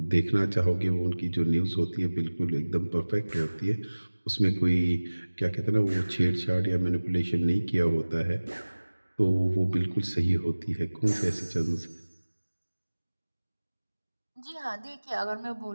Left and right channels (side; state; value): both; inverted; correlation -1.00